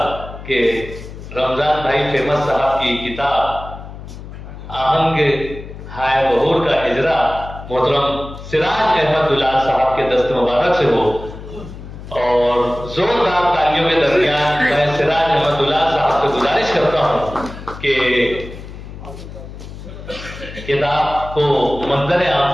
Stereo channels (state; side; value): noise; left; hum, 13 dB below the sound